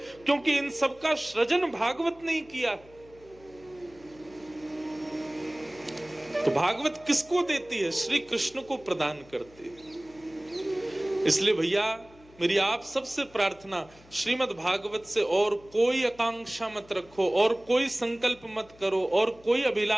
क्योंकि इन सबका सृजन भागवत नहीं किया। तो भागवत किसको देती है? श्री कृष्ण को प्रदान करती है। इसलिए भैया मेरी आप सबसे प्रार्थना, श्रीमद् भागवत से और कोई आकांक्षा मत रखो, और कोई संकल्प मत करो, और कोई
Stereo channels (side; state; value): left; noise; hum, 25 dB below the sound